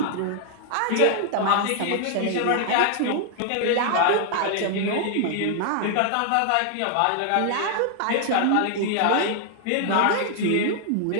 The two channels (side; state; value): both; different; correlation 0.00